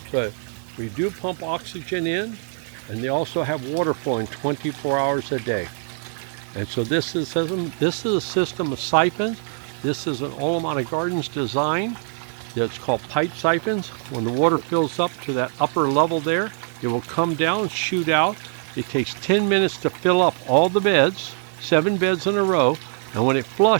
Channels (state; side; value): silent; left; 60 dB below the other